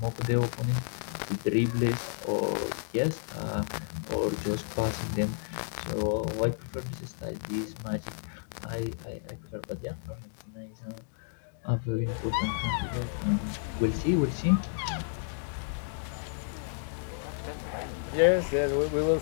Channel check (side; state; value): right; silent; digital silence